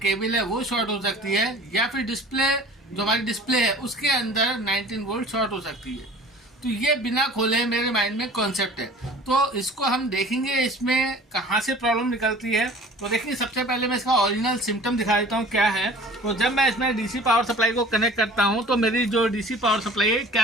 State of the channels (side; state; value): both; normal; correlation 0.45